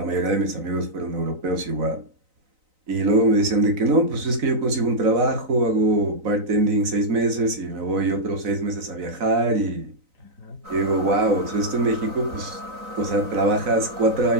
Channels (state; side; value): late; left; 3.9 ms